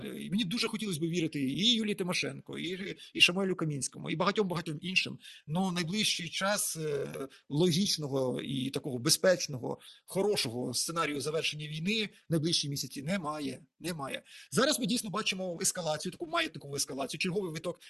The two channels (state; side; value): identical; both; correlation 1.00